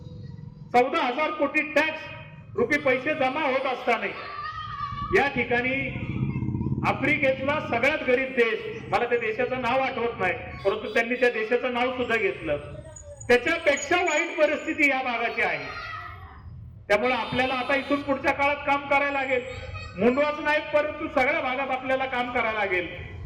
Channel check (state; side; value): identical; both; correlation 1.00